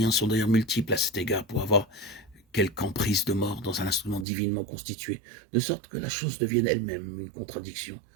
sont d'ailleurs multiples à cet égard pour avoir quelque emprise de mort dans un instrument divinement constitué, de sorte que la chose devienne elle-même une contradiction,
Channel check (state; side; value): drops out; left; at 4.2 s